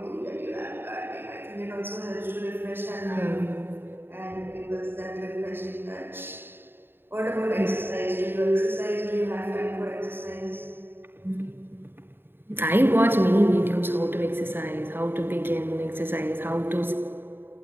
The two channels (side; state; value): left; late; 0.10 ms